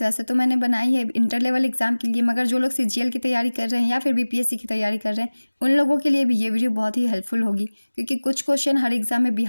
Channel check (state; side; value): inverted; both; correlation -1.00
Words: वैसे तो मैंने बनाई है इंटर लेवल एग्जाम के लिए, मगर जो लोग सीजीएल की तैयारी कर रहे हैं या फिर बीपीएससी की तैयारी कर रहे हैं उन लोगों के लिए भी ये वीडियो बहुत ही हेल्पफुल होगी, क्योंकि कुछ क्वेश्चन हर एग्जाम में